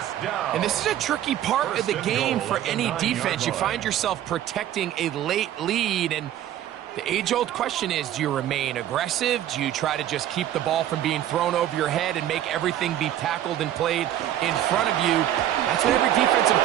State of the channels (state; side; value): quieter; left; 11.8 dB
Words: And this is a tricky part of the game for any defense. You find yourself protecting a late lead, and the age-old question is, do you remain aggressive? Do you try to just keep the ball from being thrown over your head and make everything be tackled and played in front of you? That's what every defensive